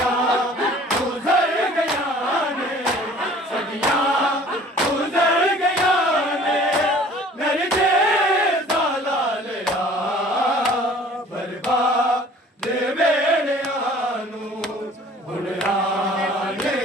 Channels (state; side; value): normal; both; correlation 0.50